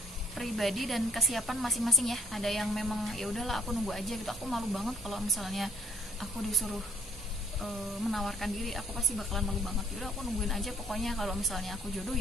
pribadi dan kesiapan masing-masing ya. Ada yang memang ya udahlah aku nunggu aja gitu, aku malu banget kalau misalnya aku disuruh menawarkan diri, aku pasti bakalan malu banget. Yaudah aku nungguin aja, pokoknya kalau misalnya aku jodoh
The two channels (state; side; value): normal; both; correlation 0.62